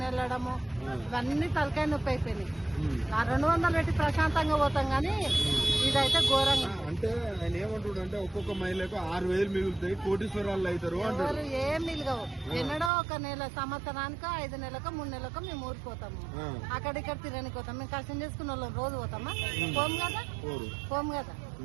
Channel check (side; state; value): left; drops out; at 12.9 s